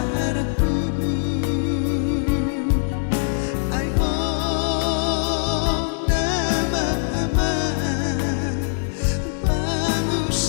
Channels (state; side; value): silent; right; digital silence